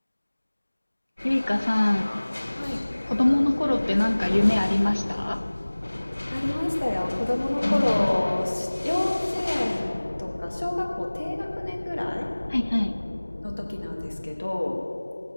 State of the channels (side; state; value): both; inverted; correlation -1.00